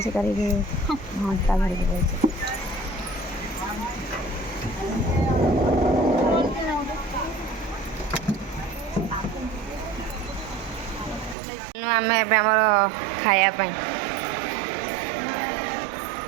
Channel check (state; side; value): drops out; left; at 11.4 s